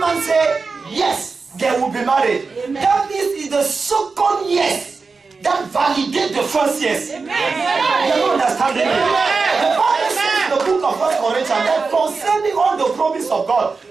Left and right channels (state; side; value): quieter; left; 4.5 dB